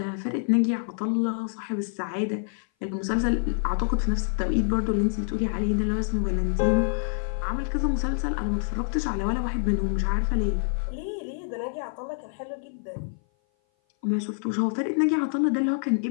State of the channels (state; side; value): silent; right; 57 dB below the other